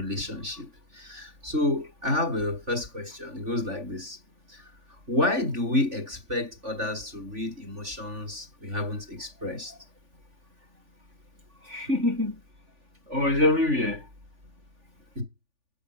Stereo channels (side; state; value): left; late; 3.4 ms